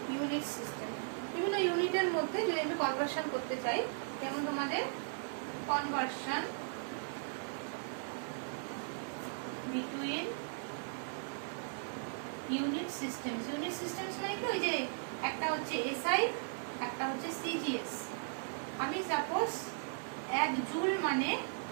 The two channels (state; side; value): silent; left; digital silence